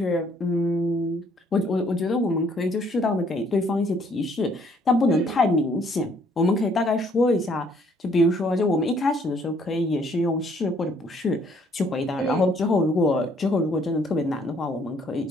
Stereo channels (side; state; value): both; normal; correlation 0.64